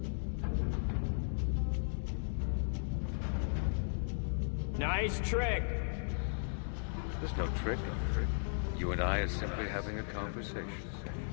Nice trick. There's no trick. You and I are simply having a conversation.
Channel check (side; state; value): right; silent; digital silence